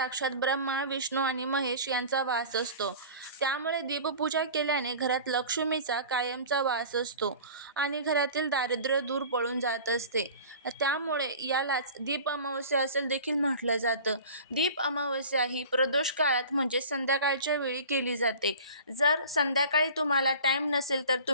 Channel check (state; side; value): inverted; both; correlation -0.40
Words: ब्रह्मा, विष्णू आणि महेश यांचा वास असतो. त्यामुळे दीपपूजा केल्याने घरात लक्ष्मीचा कायमचा वास असतो आणि घरातील दारिद्र्य दूर पळून जात असते. त्यामुळे यालाच दीप अमावस्या असे देखील म्हटलं जातं. दीप अमावस्या ही प्रदोष काळात म्हणजे संध्याकाळच्या वेळी केली जाते. जर संध्याकाळी तुम्हाला टाईम नसेल तर